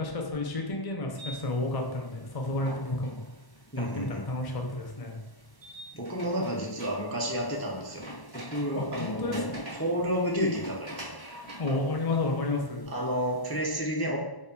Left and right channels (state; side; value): late; right; 1.0 ms